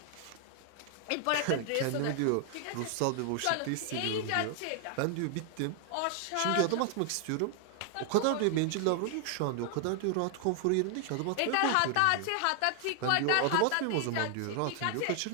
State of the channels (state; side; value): different; both; correlation 0.00